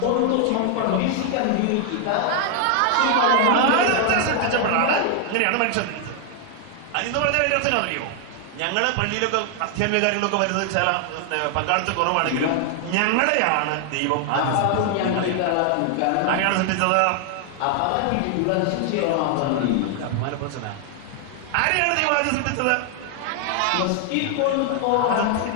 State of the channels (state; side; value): different; both; correlation 0.00